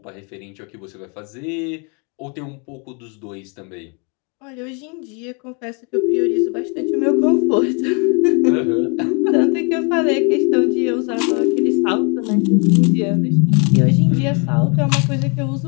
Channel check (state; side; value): quieter; right; 35.3 dB